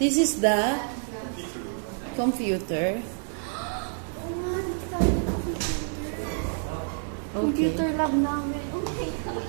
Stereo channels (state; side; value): silent; left; digital silence